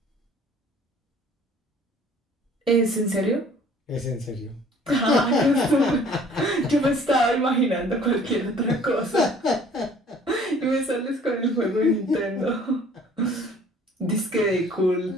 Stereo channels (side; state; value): both; normal; correlation 0.54